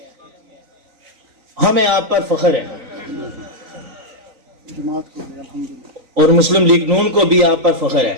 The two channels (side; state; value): left; late; 3.9 ms